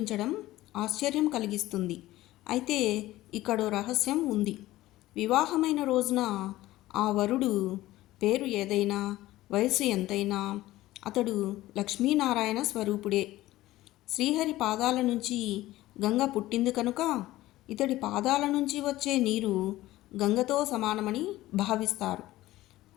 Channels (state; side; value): quieter; right; 16.4 dB